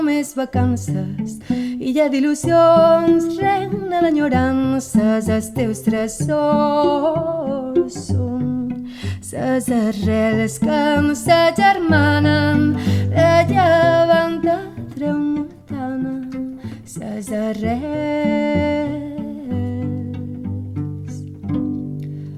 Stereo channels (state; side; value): identical; both; correlation 1.00